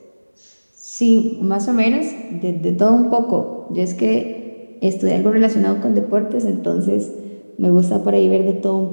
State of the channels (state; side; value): inverted; both; correlation -1.00